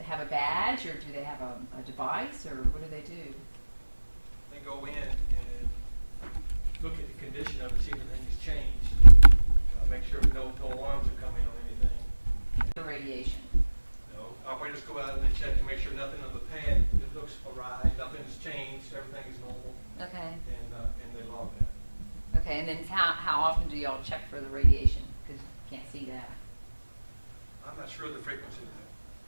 have a badge, or do they have a device, or what do they do? They go in and look at the condition of it, see if anything's changed. Make sure no alarms are coming on anything. The radiation? Operators go out and they check to make sure nothing on the pad, it looks awry, nothing's changed, everything is normal, Okay, and they log that. okay, and then how often do y'all check for the radiation? Because you can't see that. I'm not sure of the frequency of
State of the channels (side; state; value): both; inverted; correlation -1.00